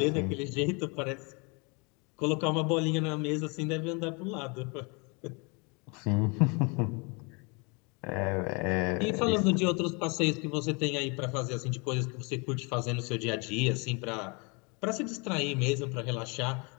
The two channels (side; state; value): right; quieter; 31.2 dB